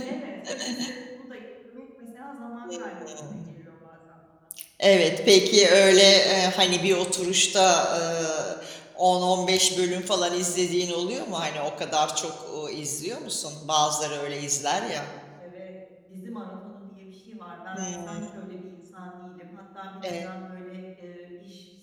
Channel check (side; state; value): both; identical; correlation 1.00